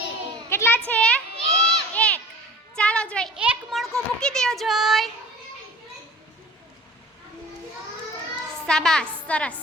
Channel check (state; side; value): normal; both; correlation 0.44